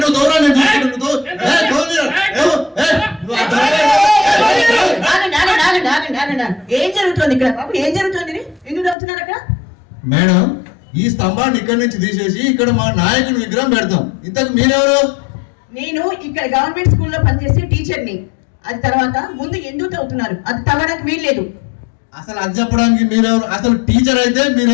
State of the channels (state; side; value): drops out; right; at 9.0 s